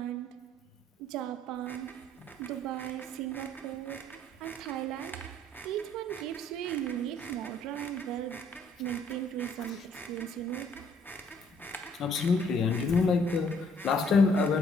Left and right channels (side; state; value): both; normal; correlation 0.63